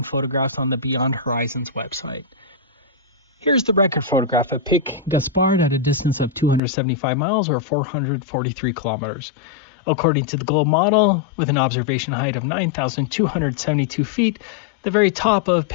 photographs on the Beyond Horizons website. Here's the record photograph of Pic Gaspard at a distance of 275 miles or 443 kilometers. According to the Globe model, with an observation height of 9,272 feet, the very top of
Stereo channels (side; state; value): right; drops out; at 6.6 s